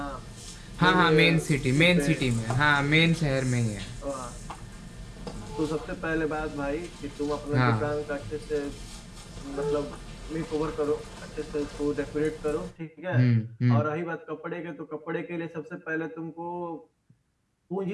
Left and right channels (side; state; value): both; identical; correlation 1.00